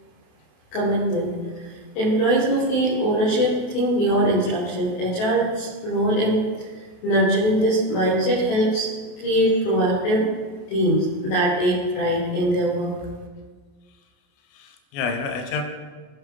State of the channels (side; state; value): right; late; 28 ms